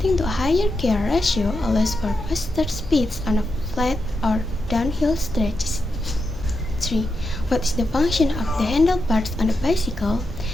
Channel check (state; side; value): normal; both; correlation 0.86